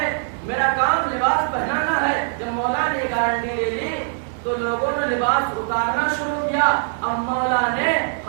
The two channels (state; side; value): silent; left; 64 dB below the other